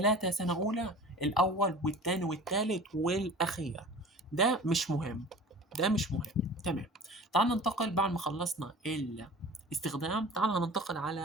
سنة اولى، الاول والتاني والتالت والاخير، ده مش مهم. ده مش مهم. تمام. تعال ننتقل بعد ما خلصنا الاستخدام، تعال هننتقل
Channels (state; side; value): normal; both; correlation 0.40